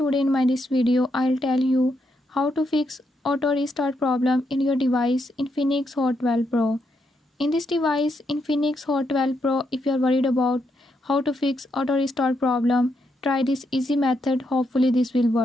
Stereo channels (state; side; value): normal; both; correlation 0.79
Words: in my this video I'll tell you how to fix auto restart problem in your device Infinix Hot 12 Pro. In this device Infinix Hot 12 Pro, if you are worried about how to fix auto restart problem, try this easy method, hopefully this will